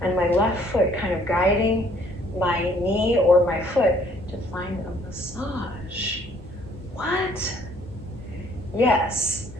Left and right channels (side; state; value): left; noise; hum, 18 dB below the sound